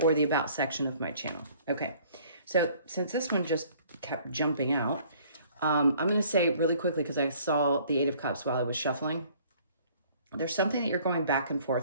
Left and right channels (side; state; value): both; inverted; correlation -0.56